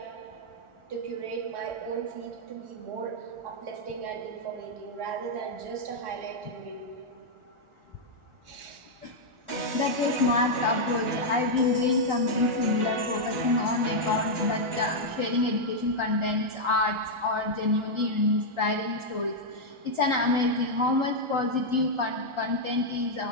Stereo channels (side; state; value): left; late; 1.4 ms